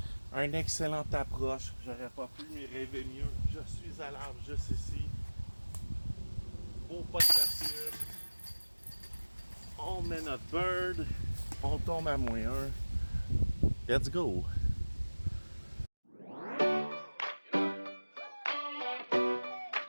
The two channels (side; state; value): both; inverted; correlation -1.00